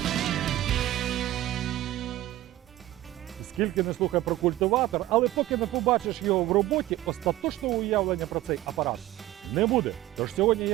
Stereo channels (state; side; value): quieter; left; 15.4 dB